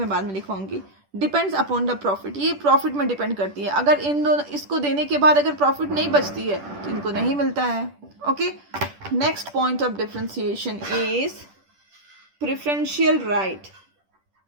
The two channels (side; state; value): left; late; 10 ms